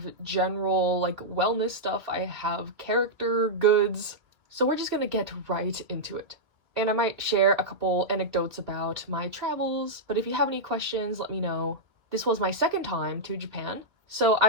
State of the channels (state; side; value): late; left; 2.6 ms